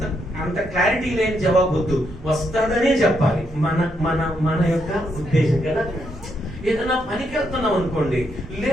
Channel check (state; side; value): normal; both; correlation 0.78